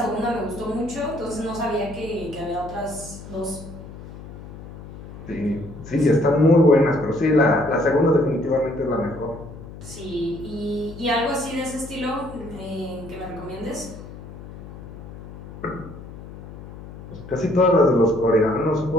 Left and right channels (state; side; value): noise; left; hum, 14 dB below the sound